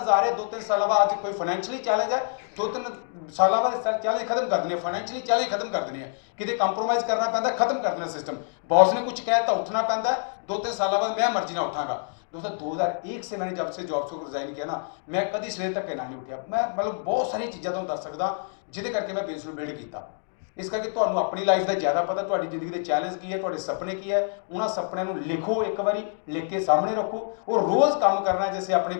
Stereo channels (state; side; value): silent; right; 61 dB below the other